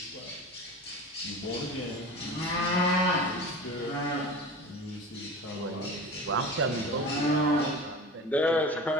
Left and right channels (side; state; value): both; normal; correlation 0.33